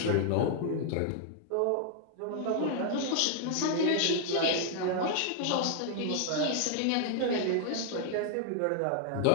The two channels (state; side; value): different; both; correlation 0.00